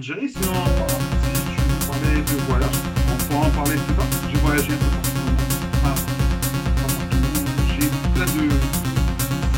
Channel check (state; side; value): identical; both; correlation 1.00